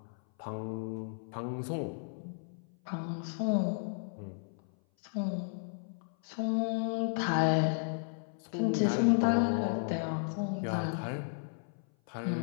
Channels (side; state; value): right; silent; 55 dB below the other